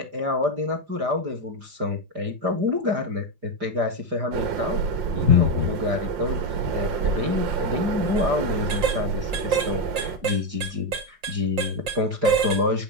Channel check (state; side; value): late; left; 5.6 ms